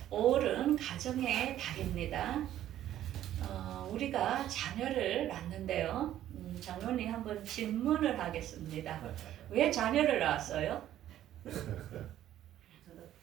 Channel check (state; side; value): quieter; left; 12.2 dB